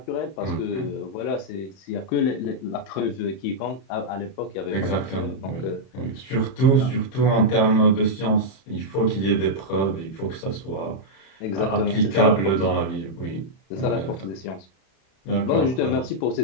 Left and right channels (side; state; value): right; late; 31 ms